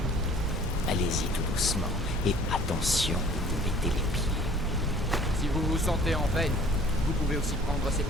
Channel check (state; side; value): normal; both; correlation 0.52